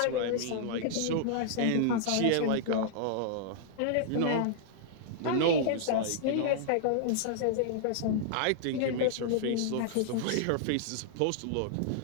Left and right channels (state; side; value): different; both; correlation -0.01